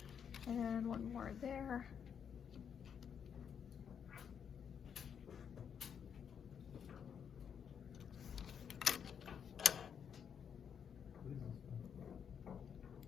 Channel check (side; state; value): right; quieter; 7.6 dB